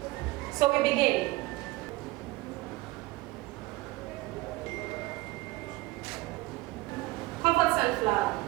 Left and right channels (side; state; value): left; quieter; 20.8 dB